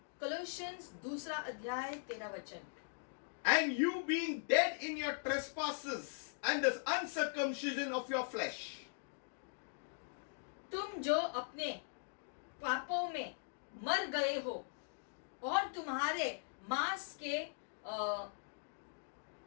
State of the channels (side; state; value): right; silent; digital silence